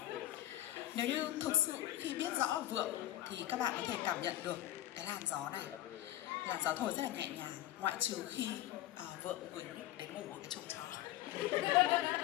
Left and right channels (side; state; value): right; quieter; 14.3 dB